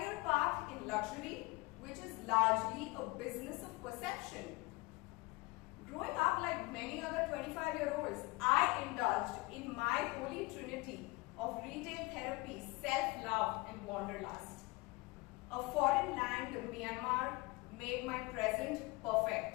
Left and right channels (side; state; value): right; quieter; 23.5 dB